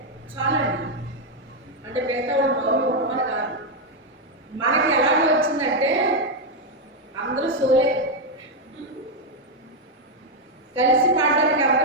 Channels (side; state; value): both; normal; correlation 0.02